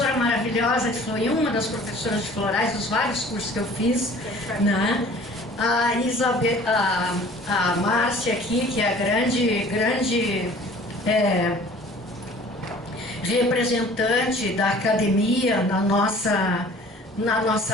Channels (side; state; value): both; normal; correlation 0.49